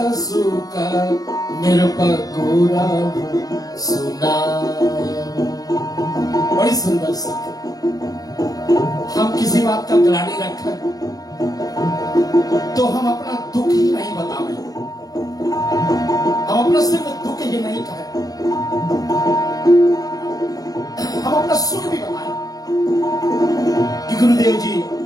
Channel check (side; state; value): right; late; 0.18 ms